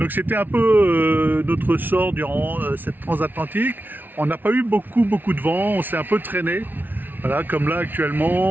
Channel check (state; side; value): late; left; 0.088 ms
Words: c'était un peu notre sort durant cette transatlantique. On n'a pas eu beaucoup de vent. On s'est un peu traîné. Voilà, comme là